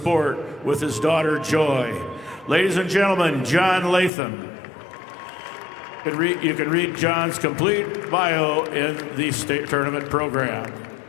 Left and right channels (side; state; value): right; drops out; at 4.1 s